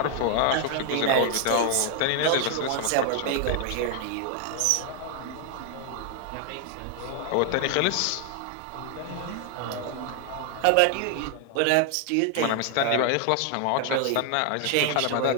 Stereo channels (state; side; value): different; both; correlation 0.00